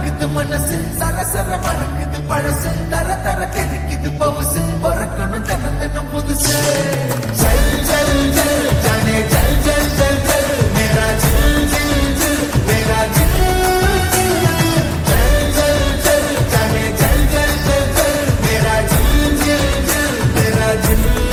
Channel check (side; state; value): both; identical; correlation 1.00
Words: பறக்குது மனசு சரசர மறக்குது பழசு தர தர கிடைக்குது பவுசு பறக்கணும் தினம் தினம் புதுசு ஜல் ஜல் ஜல் ஜானே ஜல் ஜல் ஜல் ஜல் மேரா ஜில் ஜில் ஜில் மேரா ஜில் ஜல் ஜல் ஜல் ஜானே ஜல் ஜல் ஜல் ஜல் மேரா ஜில் ஜில் ஜில் மேரா ஜில்